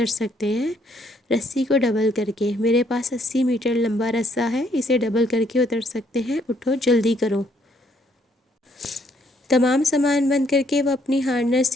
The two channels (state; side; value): normal; both; correlation 0.68